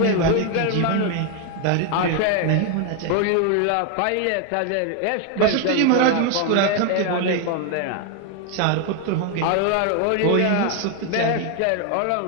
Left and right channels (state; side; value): different; both; correlation 0.01